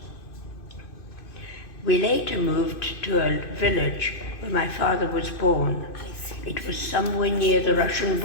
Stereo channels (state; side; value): late; right; 2.6 ms